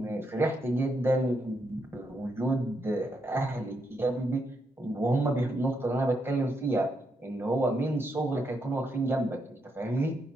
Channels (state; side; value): normal; both; correlation 0.80